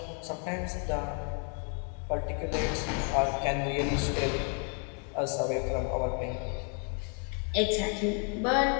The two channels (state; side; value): quieter; right; 39.3 dB